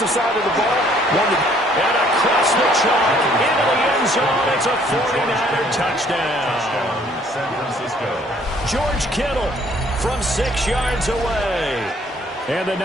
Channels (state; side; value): normal; both; correlation 0.61